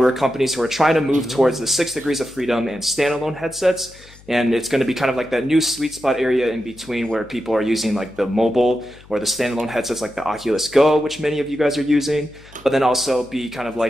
companies who are trying to move towards the 6 degrees of freedom and standalone headsets. And it's going to be kind of like that new sweet spot area in between where people are using like the mobile or the standalone headsets like the Oculus Go, which many of you guys are using, but then also be kind of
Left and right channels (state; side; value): noise; left; hum, 24 dB below the sound